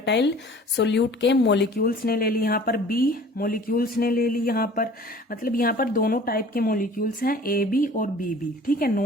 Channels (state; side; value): normal; both; correlation 0.47